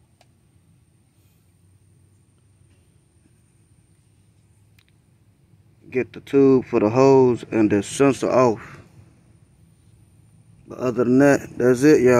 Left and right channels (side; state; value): both; identical; correlation 1.00